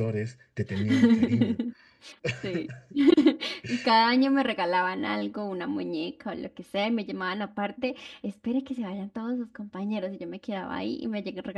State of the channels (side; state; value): both; identical; correlation 1.00